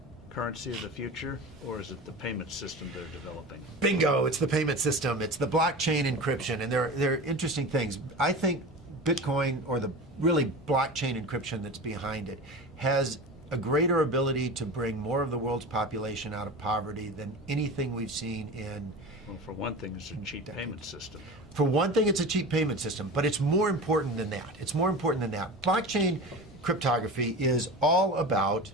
currency of the future, or is it the payment system they're developing? Bingo, it's the payment system. It's the blockchain encryption, and they're interesting things. I think Bitcoin, or the really blockchain encryption that's behind it, has a greater ability to bring more of the world's population out of poverty than anything we've seen in... Well, for one thing, it's a cheap payment system. For one thing, it's a cheap payment system, but it's more important than that. It's more important than that. Blockchain cryptography is all about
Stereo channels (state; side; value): normal; both; correlation 0.31